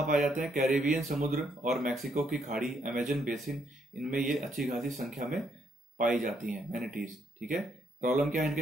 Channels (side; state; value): both; normal; correlation 0.73